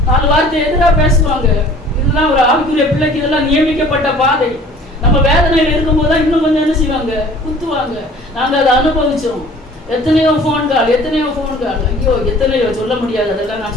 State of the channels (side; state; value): both; normal; correlation 0.49